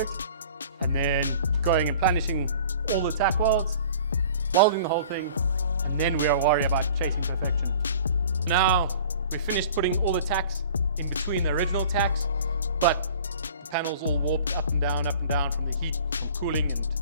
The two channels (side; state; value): both; inverted; correlation -0.46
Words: and then going and planishing all the tack welds, welding the whole thing, and then we are worried about chasing perfection. Now, we finished putting all the tacks in between the original tacks, but the panel's all warped up and down from the heat, from cooling and